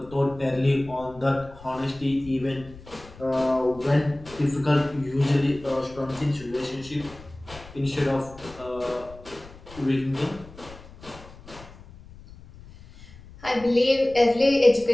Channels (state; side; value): noise; left; rumble, 19 dB below the sound